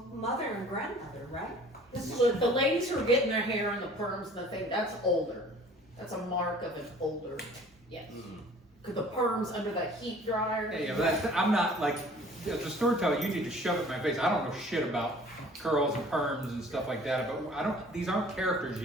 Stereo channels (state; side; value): normal; both; correlation 0.50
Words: mother and grandmother, right? This is The ladies who are getting their hair and the perms and the thing, that's older. That's a mark of an older, yes. Cause the perms under that heat dryer. Yeah, but I'm not like, as a storyteller, you need to shove it in my face. I don't know shit about curls and perms and stuff like that, but these aren't characters